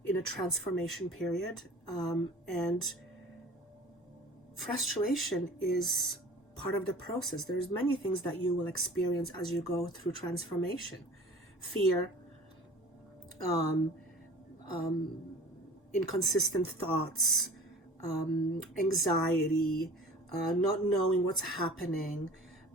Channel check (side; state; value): both; normal; correlation 0.43